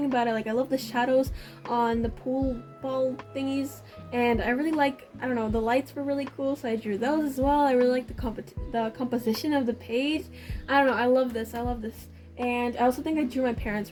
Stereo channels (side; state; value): both; identical; correlation 1.00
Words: about it. Like, I love the shadows on the pool ball thingies, and I really like, I don't know, the lights were really cool, so I drew those as well. I really like the composition of the page. I don't know, I love this. And I also think I drew my parents